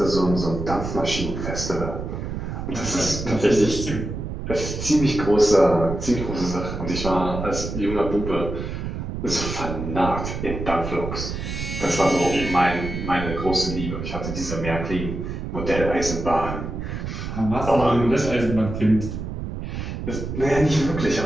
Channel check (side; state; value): right; noise; rumble, 5 dB below the sound